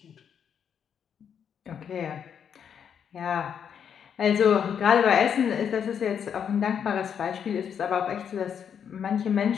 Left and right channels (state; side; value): quieter; right; 7.9 dB